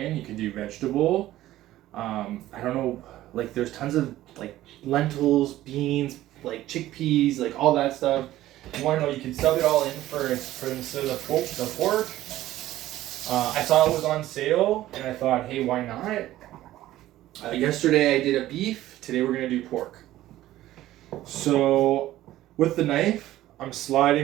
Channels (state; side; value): quieter; left; 14.7 dB